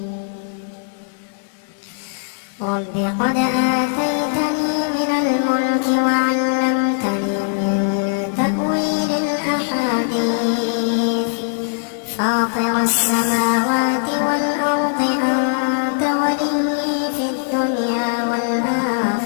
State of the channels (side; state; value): right; silent; 66 dB below the other